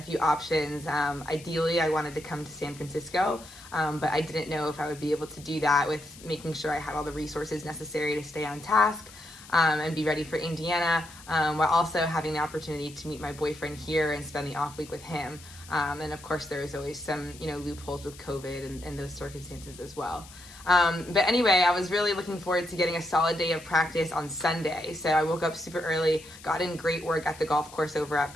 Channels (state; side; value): noise; left; hiss, 19 dB below the sound